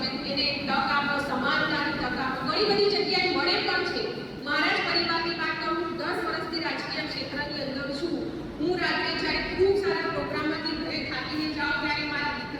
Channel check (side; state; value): both; identical; correlation 1.00